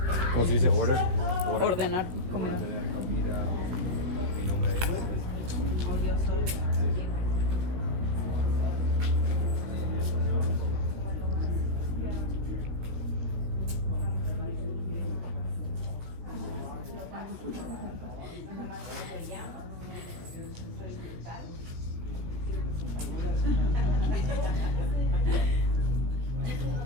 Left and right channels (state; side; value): late; left; 17 ms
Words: ¿Cómo se dice? Order. Ordenar comida.